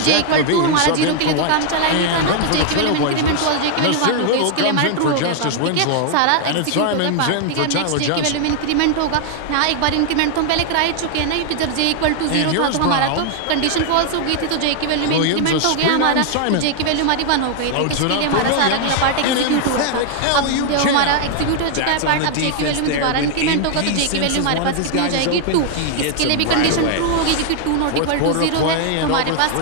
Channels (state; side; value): different; both; correlation 0.00